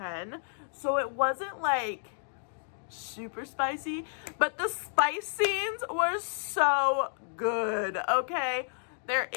So it wasn't like super spicy, but the spice scenes were so good, okay? There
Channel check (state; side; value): silent; right; digital silence